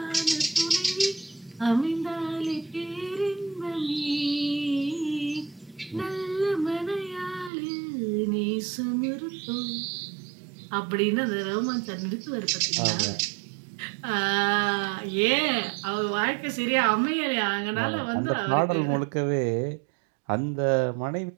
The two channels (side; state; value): left; drops out; at 7.5 s